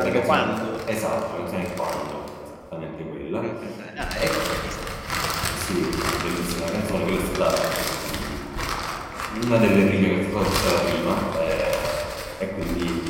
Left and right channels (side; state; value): both; identical; correlation 1.00